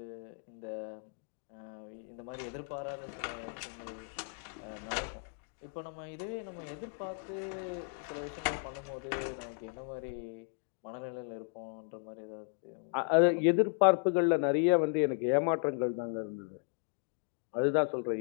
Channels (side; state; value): right; silent; 54 dB below the other